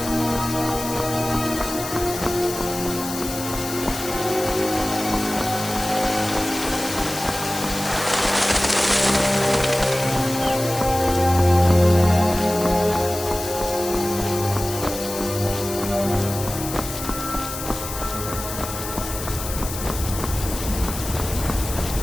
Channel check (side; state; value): left; noise; hiss, 8 dB below the sound